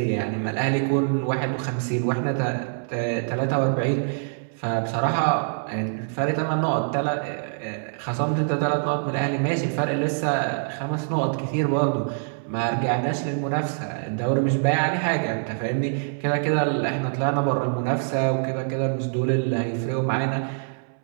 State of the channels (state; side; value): silent; left; 62 dB below the other